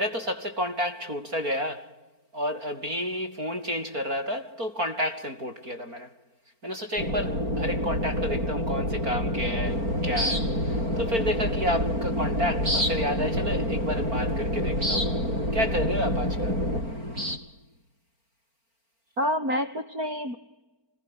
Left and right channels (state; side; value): late; left; 4.4 ms